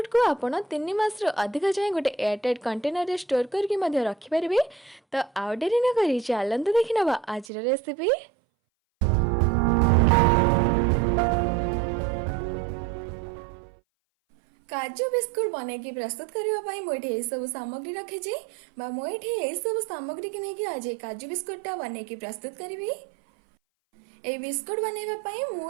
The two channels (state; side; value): drops out; left; at 7.5 s